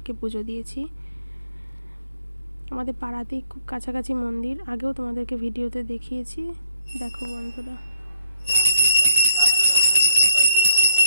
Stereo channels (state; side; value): inverted; both; correlation -0.68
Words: পুজো দিয়েছি। আমাদের পাড়াতেই খুব কাছাকাছি মন্দির, আগেও তোমাদেরকে ভিডিওতে দেখিয়েছি। দেখো বন্ধুরা,